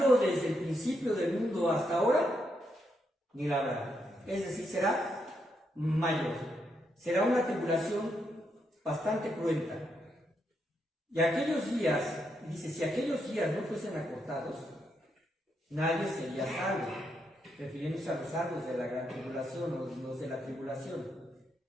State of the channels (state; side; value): normal; both; correlation 0.80